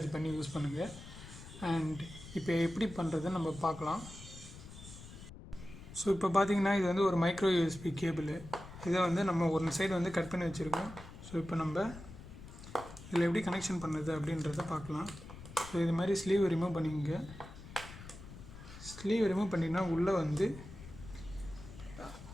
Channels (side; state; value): left; noise; rumble, 15 dB below the sound